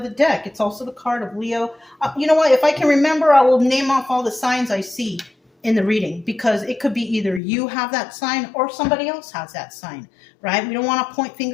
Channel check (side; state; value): right; drops out; at 7.4 s